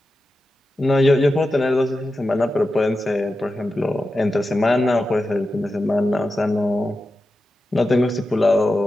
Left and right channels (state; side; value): normal; both; correlation 0.91